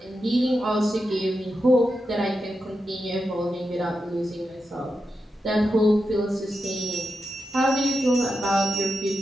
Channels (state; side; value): normal; both; correlation 0.88